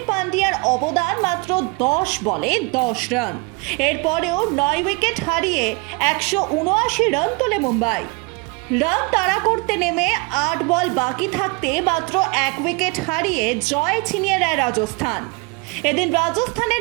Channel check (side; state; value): left; quieter; 28.1 dB